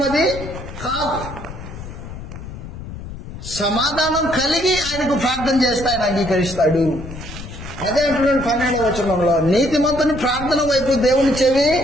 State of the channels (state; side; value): noise; left; rumble, 11 dB below the sound